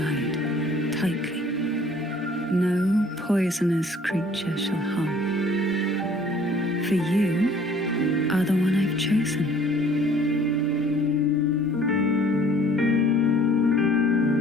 tightly. No poisonous creature shall harm. For you are the one I've chosen.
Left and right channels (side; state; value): both; normal; correlation 0.54